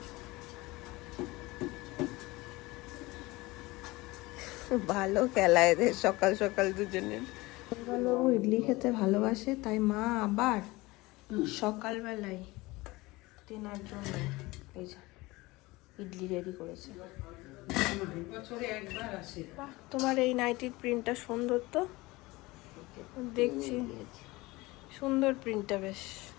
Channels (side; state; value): right; quieter; 21.3 dB